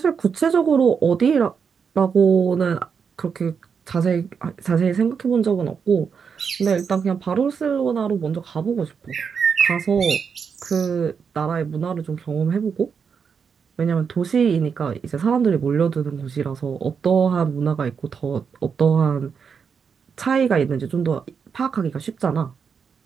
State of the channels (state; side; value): quieter; left; 6.3 dB